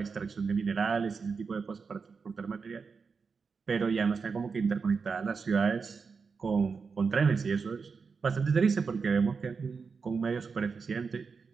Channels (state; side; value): quieter; left; 5.2 dB